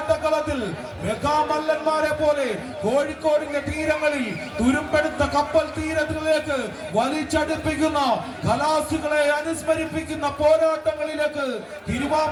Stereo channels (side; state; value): both; identical; correlation 1.00